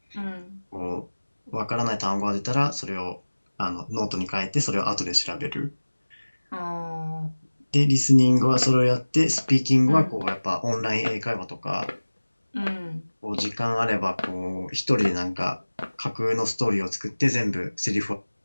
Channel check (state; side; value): inverted; both; correlation -1.00